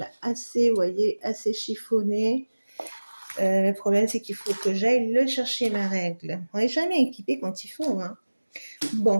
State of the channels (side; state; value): both; inverted; correlation -1.00